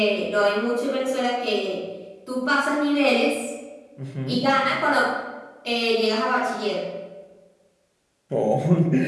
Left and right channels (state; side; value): identical; both; correlation 1.00